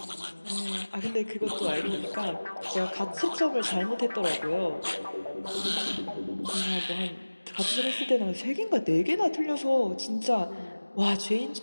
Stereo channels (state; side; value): inverted; both; correlation -1.00